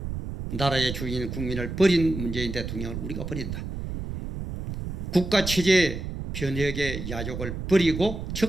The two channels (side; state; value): right; noise; rumble, 6 dB below the sound